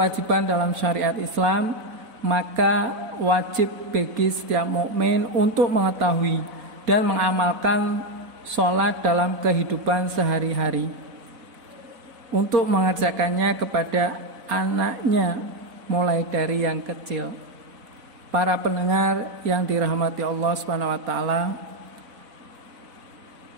dalam syariat Islam, maka wajib bagi setiap mukmin untuk mengetahui dan mengamalkan sholat dalam kehidupan sehari-hari, untuk mengerjakannya kepada anaknya mulai dari yang kecil. Para pendengar yang dirahmati Allah Subhanahu wa taala,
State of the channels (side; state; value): left; late; 4.0 ms